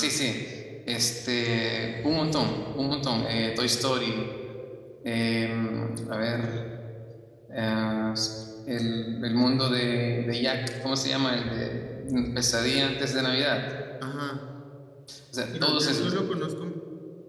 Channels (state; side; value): identical; both; correlation 1.00